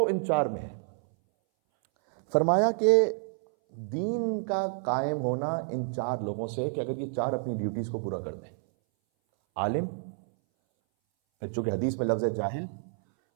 ان چار میں ہے۔ فرمایا کہ دین کا قائم ہونا ان چار لوگوں سے، کہ اگر یہ چار اپنی ڈیوٹیز کو پورا کر دیں، عالم، پھر چونکہ حدیث میں لفظ ہے جاہل،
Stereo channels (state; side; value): silent; left; 59 dB below the other